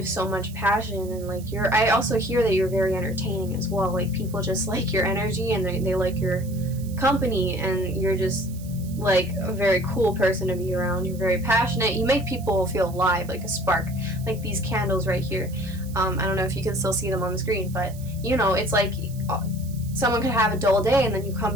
so much passion. And like, I also hear that you're very entertaining as well. Like, people just like your energy, and they like your company, and you're just like a very cool person to be around. You're very passionate. You make people feel alive, like a spark, like these candles right here. I don't know if you can still see them on the screen, but you know, it's like someone could have a dull day and then you come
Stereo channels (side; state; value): right; noise; hiss, 20 dB below the sound